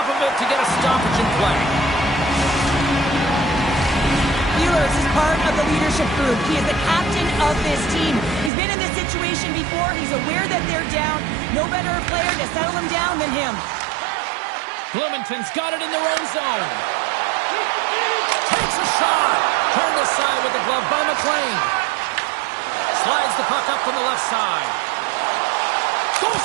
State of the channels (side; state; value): left; drops out; at 8.5 s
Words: of it to get a stoppage in play. Ehlers is part of the leadership group. He is the captain of this team. He's been in this situation before. He's aware that they're down. No better player to settle them down than him. Bloomington's got it in their own zone. Takes a shot. Turned aside with the glove by McLean. Slides the puck up from the left side. Goes